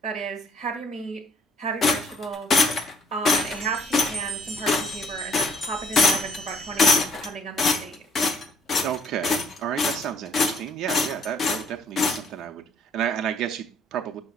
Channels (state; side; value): normal; both; correlation 0.62